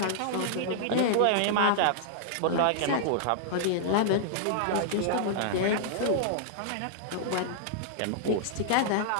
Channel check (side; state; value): both; different; correlation -0.01